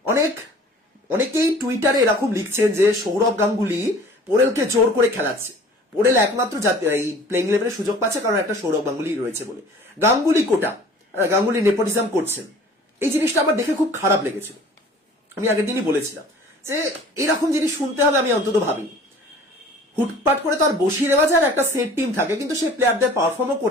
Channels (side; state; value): both; normal; correlation 0.48